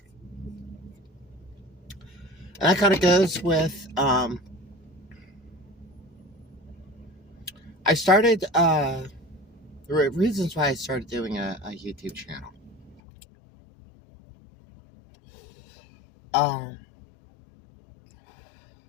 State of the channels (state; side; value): drops out; right; at 13.0 s